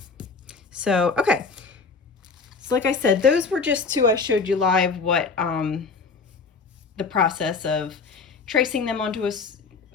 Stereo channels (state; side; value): quieter; right; 4.7 dB